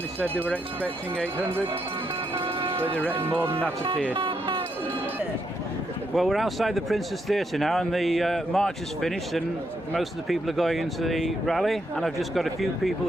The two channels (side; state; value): both; normal; correlation 0.78